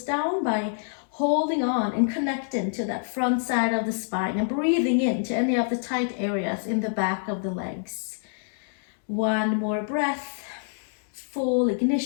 down by holding on and connecting to that front side of the spine and breathing into any of the tight areas in the back of the legs. 1 more breath, full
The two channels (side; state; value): right; silent; digital silence